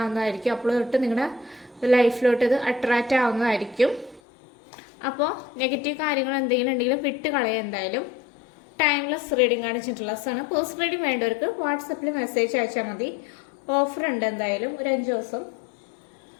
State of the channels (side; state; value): right; drops out; at 4.2 s